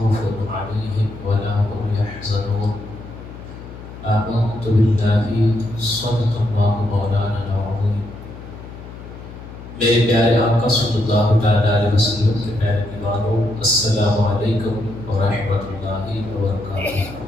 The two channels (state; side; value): noise; left; hum, 14 dB below the sound